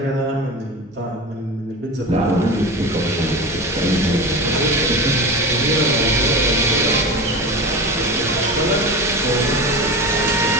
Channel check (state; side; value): normal; both; correlation 0.28